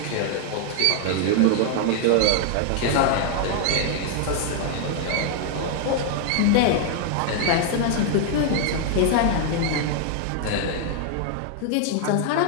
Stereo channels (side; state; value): both; different; correlation 0.00